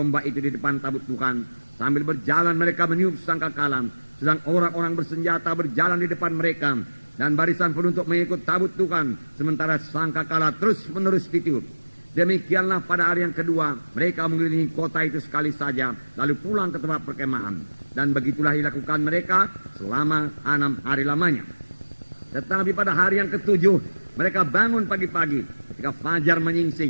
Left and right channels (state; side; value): inverted; both; correlation -1.00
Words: itu di depan tabut Tuhan. Sambil berjalan mereka meniup sangkakala, sedang orang-orang bersenjata berjalan di depan mereka, dan barisan penutup mengikut tabut Tuhan, sementara sangkakala terus-menerus ditiup. Demikianlah pada hari yang kedua mereka mengelilingi kota itu sekali saja, lalu pulang ke tempat perkemahan. Dan begitulah dilakukan mereka selama 6 hari lamanya. Tetapi pada hari yang ke-7 mereka bangun pagi-pagi ketika fajar